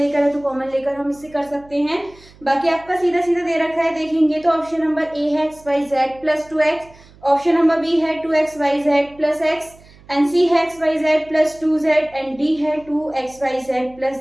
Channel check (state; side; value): noise; right; hum, 25 dB below the sound